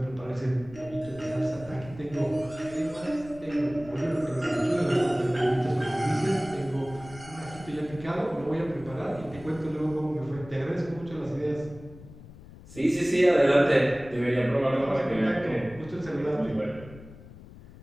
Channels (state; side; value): noise; left; rumble, 18 dB below the sound